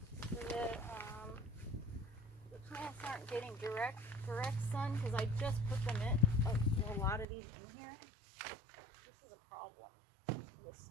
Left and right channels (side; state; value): left; drops out; at 7.2 s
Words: so that the plants aren't getting direct sun, because I just put them in a lot of these in here. This is a problem. This